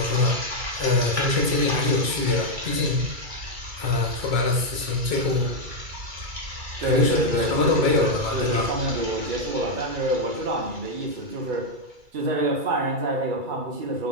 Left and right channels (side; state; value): left; late; 2.3 ms